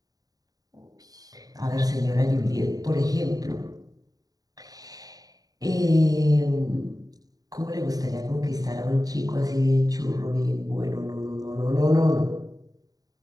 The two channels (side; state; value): left; late; 0.18 ms